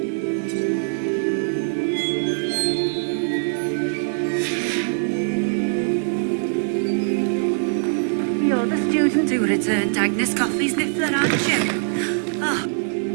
You're the student who returned Agnes Coffey's Niffler, aren't you? Oh.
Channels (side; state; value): left; silent; 64 dB below the other